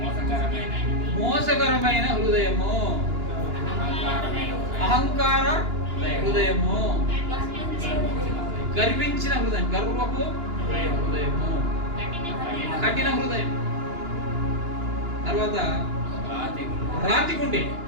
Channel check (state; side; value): late; left; 2.9 ms